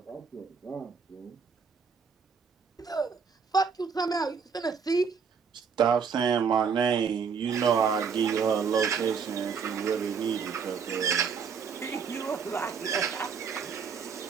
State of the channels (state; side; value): quieter; left; 6.1 dB